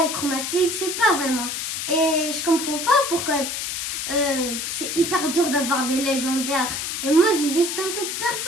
chromatique, c'est pas vraiment. Et je comprends pas pourquoi c'est hyper dur d'avoir des légendaires. Et moi, j'ai juste un peu de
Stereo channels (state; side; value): noise; left; hiss, 3 dB below the sound